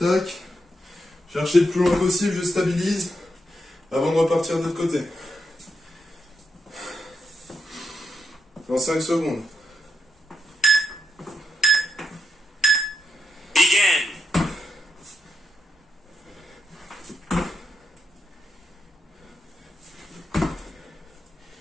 Chercher le plus loin possible, je stabilise avant de repartir de l'autre côté. Dans 5 secondes. Begin.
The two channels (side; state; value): both; normal; correlation 0.84